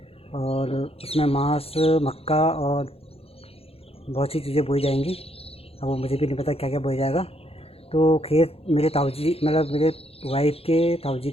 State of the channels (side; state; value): right; late; 0.28 ms